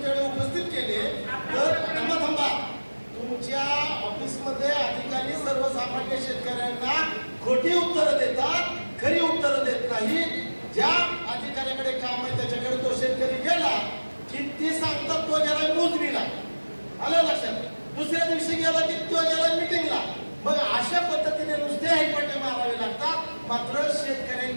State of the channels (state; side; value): inverted; both; correlation -1.00